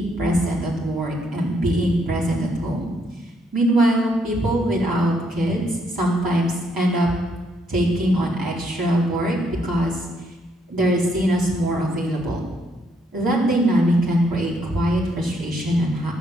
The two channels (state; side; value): normal; both; correlation 0.73